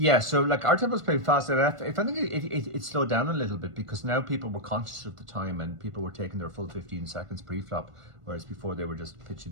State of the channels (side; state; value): left; late; 1.5 ms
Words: So like our table was playing fast, and if I think it slowed down a little bit, because now people were conscious of the time and people were taking their full 15 seconds pre-flop, whereas before they were just pitching